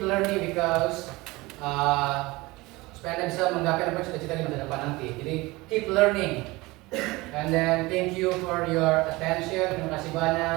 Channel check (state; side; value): quieter; left; 21.8 dB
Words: learning because supaya Anda bisa menggapai apa yang cita-cita di masa depan nanti. Jadi keep learning. And then thank you for your attention. Terima kasih